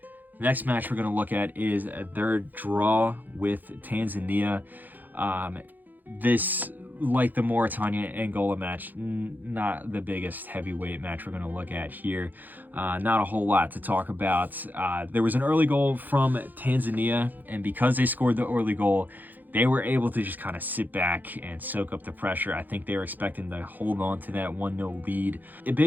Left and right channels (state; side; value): late; left; 0.085 ms